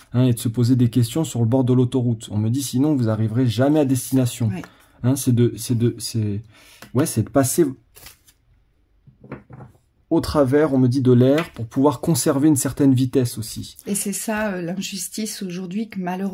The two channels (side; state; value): both; identical; correlation 1.00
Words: Et de se poser des questions sur le bord de l'autoroute. On me dit sinon vous n'arriverez jamais à destination. Ouais. C'est de passer au travers, on me dit, de l'air pour pouvoir conserver une certaine vitesse aussi. Et c'est ça l'injustice aujourd'hui que